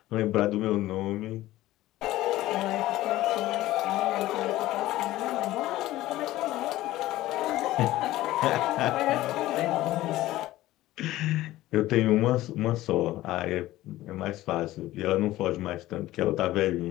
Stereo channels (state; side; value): quieter; right; 16.1 dB